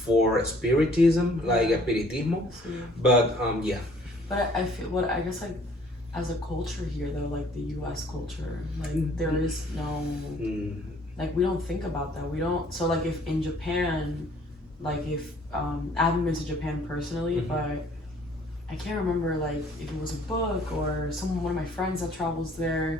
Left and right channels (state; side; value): normal; both; correlation 0.58